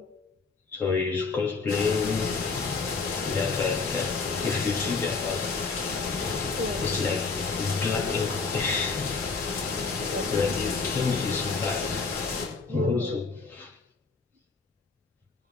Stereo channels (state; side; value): quieter; right; 4.5 dB